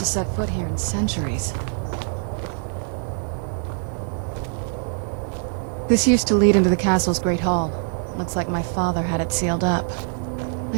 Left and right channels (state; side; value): silent; left; 63 dB below the other